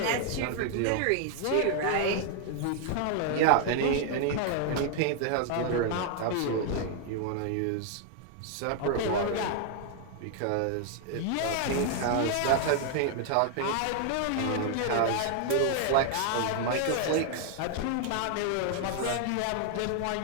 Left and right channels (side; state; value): both; different; correlation 0.00